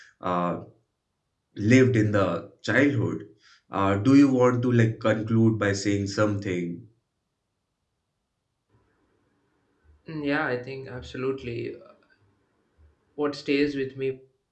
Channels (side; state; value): both; identical; correlation 1.00